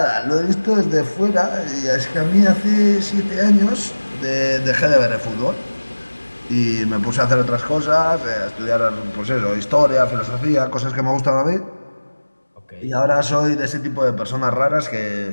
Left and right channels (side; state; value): both; inverted; correlation -1.00